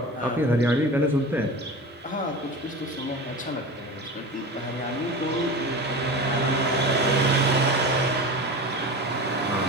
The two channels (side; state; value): both; normal; correlation 0.30